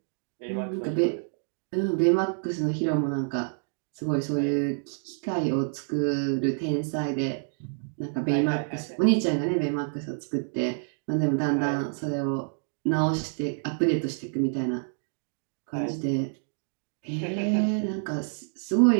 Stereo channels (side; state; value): left; silent; digital silence